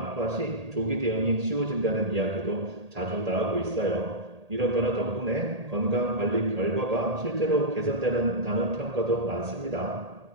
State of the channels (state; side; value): late; left; 1.8 ms